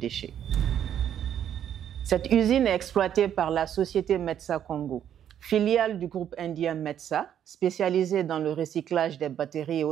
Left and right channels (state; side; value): quieter; left; 9.8 dB